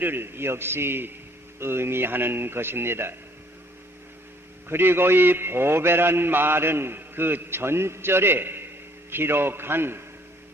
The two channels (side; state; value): both; normal; correlation 0.61